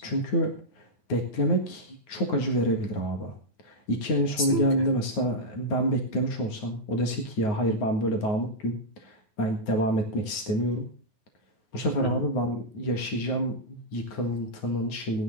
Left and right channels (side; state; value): right; late; 9.4 ms